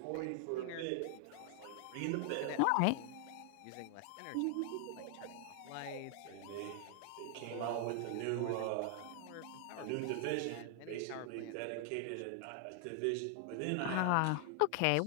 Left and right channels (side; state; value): both; different; correlation 0.00